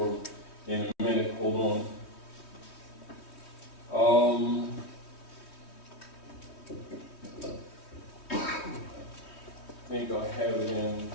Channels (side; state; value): right; late; 3.2 ms